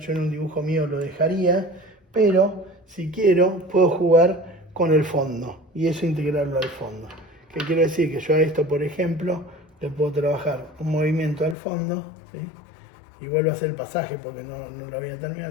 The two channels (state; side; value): drops out; right; at 11.6 s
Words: en un dibujo mío lo dejaría, pero si quiero puedo jugar con el fondo y eso integrarlo al fondo. ¿Qué quiero decir? Que yo a esto, por ejemplo, le puedo trabajar un movimiento al fondo, ¿sí? Y vuelvo a hacer el pasaje porque no lo voy a